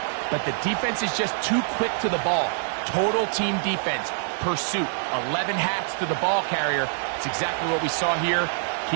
but the defense is just too quick to the ball. Total team defense, pursuit, 11 hats to the ball carrier. It's exactly what we saw here.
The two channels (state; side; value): silent; left; digital silence